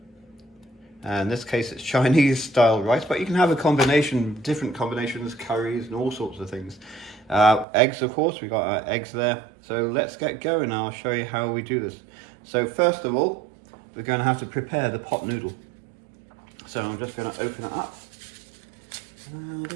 In this case it's Chinese style rice, but you can have a combination, different combinations, curries and all sorts of things. Eggs, of course, we've got our eggs there. So let's get going. I'll show you how we do this. So first of all, we're going to have to prepare the pot noodle. So I'm just going to open it up.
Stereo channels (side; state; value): left; drops out; at 7.7 s